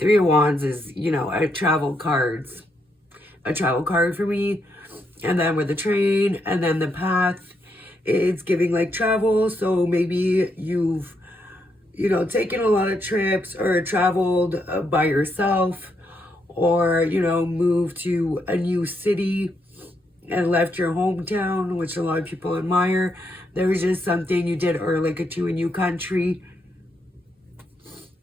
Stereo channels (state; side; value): normal; both; correlation 0.78